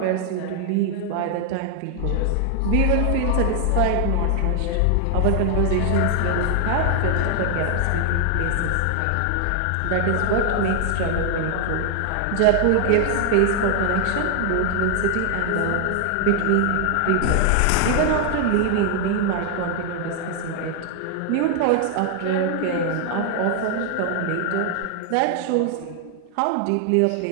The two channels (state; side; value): different; both; correlation 0.00